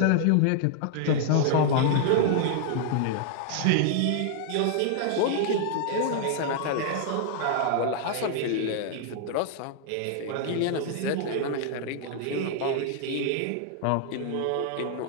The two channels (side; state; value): both; different; correlation 0.00